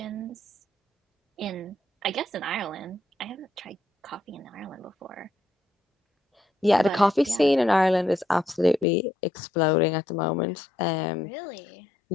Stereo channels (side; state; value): right; drops out; at 8.8 s